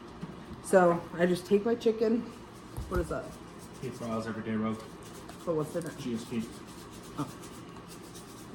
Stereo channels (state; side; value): identical; both; correlation 1.00